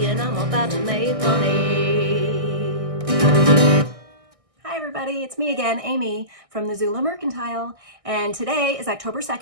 and I'm about to make money. Hi everybody, it's me again, Amy from the Zula Mercantile, and today is October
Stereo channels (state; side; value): late; left; 1.6 ms